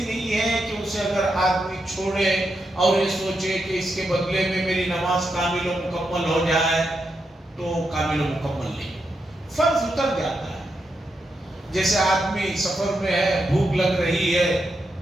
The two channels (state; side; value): normal; both; correlation 0.84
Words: نہیں ہے کہ اسے اگر آدمی چھوڑے اور یہ سوچے کہ اس کے بدلے میں میری نماز کامل و مکمل ہو جائے تو کامل و مکمل نہیں، فرض اتر جاتا ہے۔ جیسے آدمی سفر میں ہے، بھوک لگ رہی ہے،